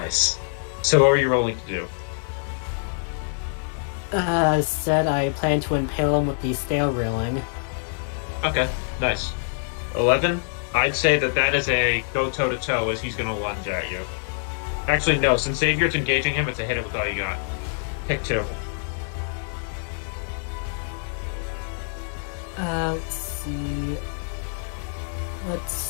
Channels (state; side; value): silent; right; digital silence